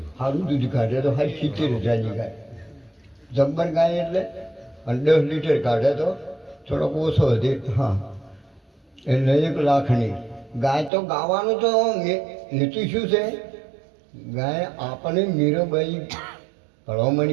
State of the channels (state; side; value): drops out; left; at 10.9 s